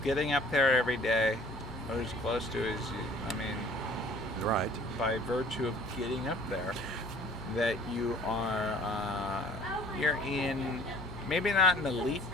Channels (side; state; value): both; normal; correlation 0.52